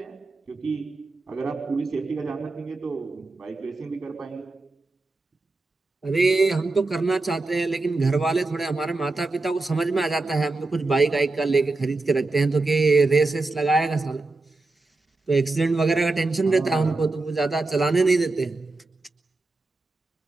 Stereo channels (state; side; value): quieter; left; 3.3 dB